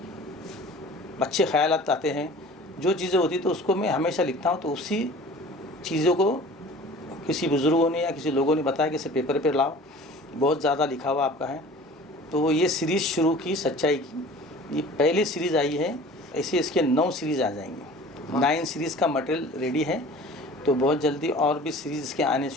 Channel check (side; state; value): both; normal; correlation 0.44